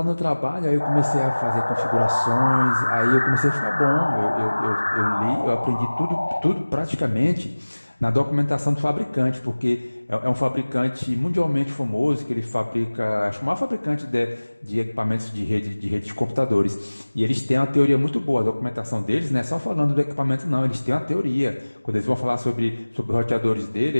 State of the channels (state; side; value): inverted; both; correlation -1.00